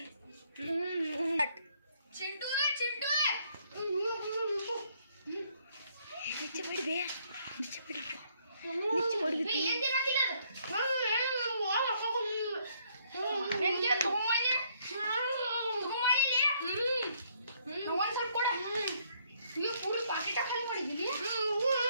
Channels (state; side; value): inverted; both; correlation -0.68